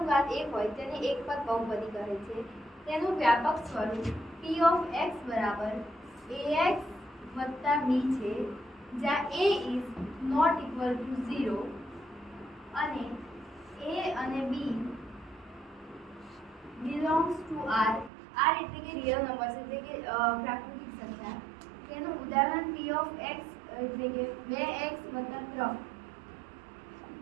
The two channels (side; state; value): left; drops out; at 18.1 s